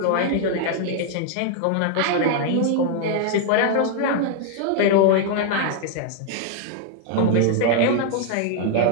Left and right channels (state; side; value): different; both; correlation 0.00